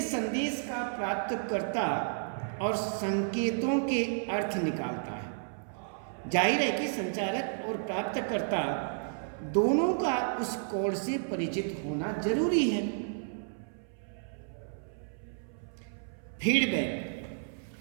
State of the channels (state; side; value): silent; left; 56 dB below the other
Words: संदेश का प्राप्तकर्ता और संकेतों के अर्थ निकालता है। जाहिर है कि संचारक और प्राप्तकर्ता दोनों का उस कोड से परिचित होना जरूरी है।